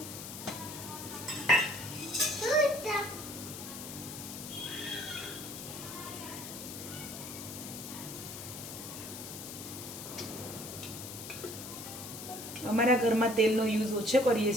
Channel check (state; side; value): noise; left; hiss, 9 dB below the sound